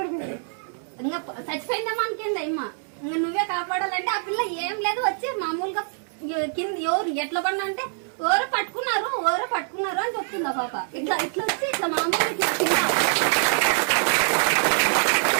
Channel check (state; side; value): silent; left; digital silence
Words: ఇంకా చచ్చిపోయిందేమో అనుకుంది అమ్మ. ఇంకా నువ్వే కాపాడాలంటే ఆ పిల్ల ఏం లేదు వచ్చి మామూలుగా కింద ఎవరు ఎట్లా పడినా అంటే ఎవరో పట్టుకున్నారు అని చెప్తుంది ఆ పాప. ఇట్లా వచ్చి ఇట్లా మామూలుగా